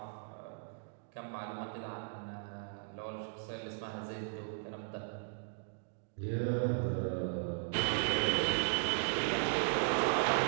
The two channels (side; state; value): left; silent; digital silence